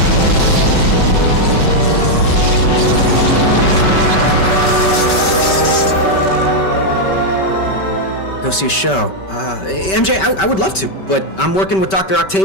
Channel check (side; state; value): right; late; 5.2 ms